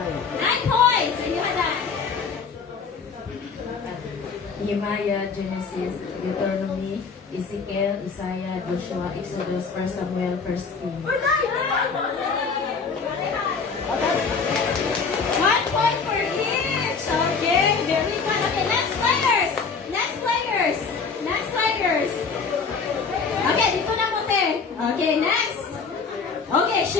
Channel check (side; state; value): right; quieter; 5.2 dB